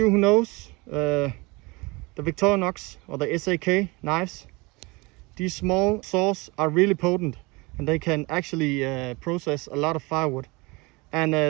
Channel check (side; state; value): left; quieter; 25.4 dB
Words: who knows the Victorinox or the SAK knives, these small saws are really potent and they can actually process a lot of firewood. And